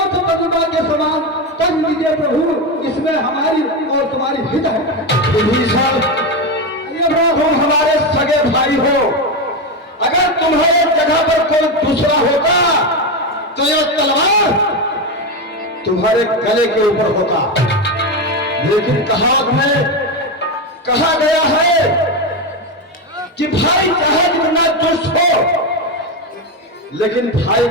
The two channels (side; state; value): both; normal; correlation 0.13